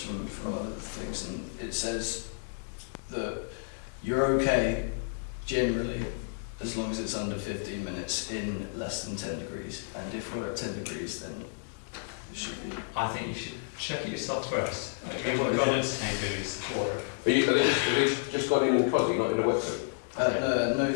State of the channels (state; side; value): silent; right; digital silence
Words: from other things, and it says that you're okay generally as long as it's under 15 minutes in less than 10 degrees, and if we're at 10 degrees then it should be. I think you should check it yourself first. You want to go into 10 degrees water. Are they just gone in cosy, not in a wetsuit? No